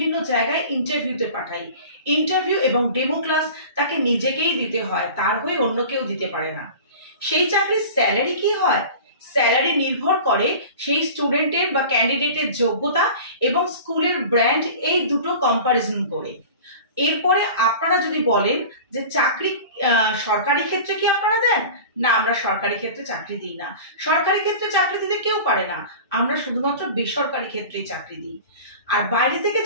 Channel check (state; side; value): inverted; both; correlation -0.38